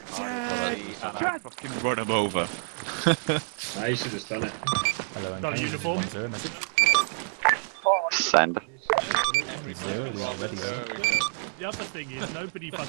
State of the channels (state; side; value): silent; left; 59 dB below the other